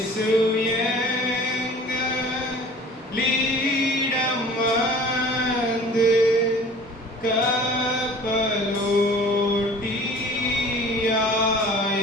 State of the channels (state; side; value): normal; both; correlation 0.46